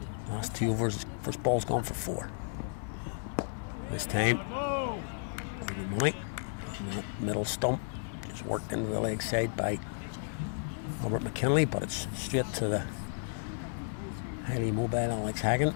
last 2 overs, first ball's gone for 4. This time, over money. And that middle stump just worked into the leg side by Robert McKinley, but it's straight to the highly mobile Alex Hagan,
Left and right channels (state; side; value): silent; right; 56 dB below the other